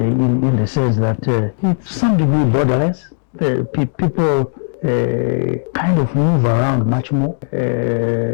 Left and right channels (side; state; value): right; silent; digital silence